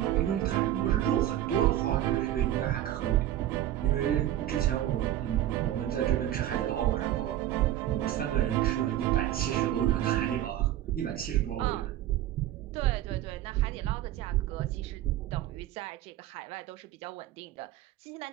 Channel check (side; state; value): left; quieter; 12.8 dB